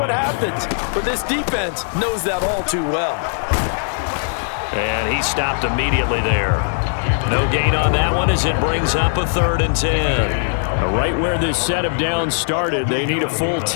happens. But this defense knows that all too well. And he stopped immediately there. No gain on that one as it brings up a 3rd and 10. Now, right where this set of downs started, they need a full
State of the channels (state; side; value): silent; right; 66 dB below the other